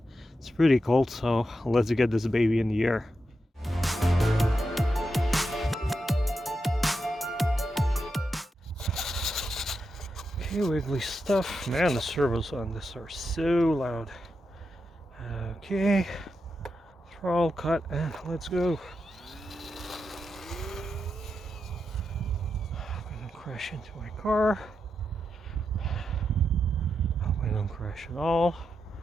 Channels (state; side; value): normal; both; correlation 0.87